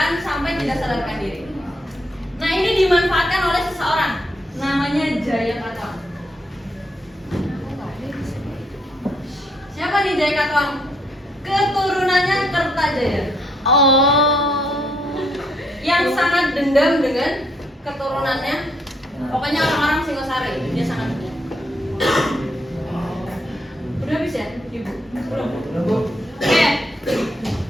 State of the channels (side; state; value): both; normal; correlation 0.73